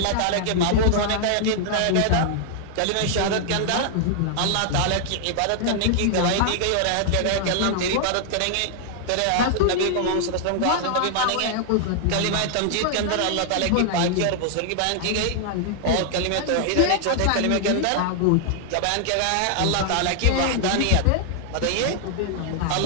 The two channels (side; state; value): both; different; correlation -0.01